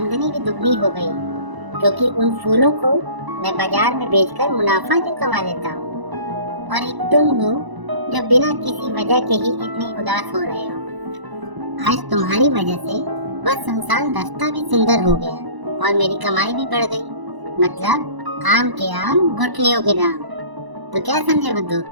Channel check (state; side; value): late; left; 1.0 ms